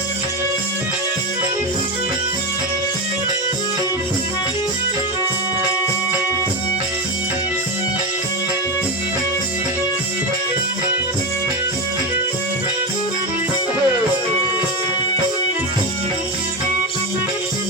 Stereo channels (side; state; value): both; normal; correlation 0.15